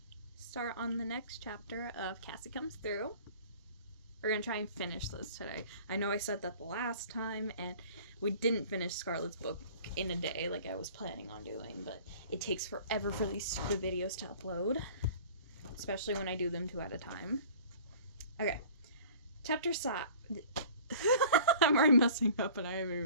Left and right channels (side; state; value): both; inverted; correlation -0.46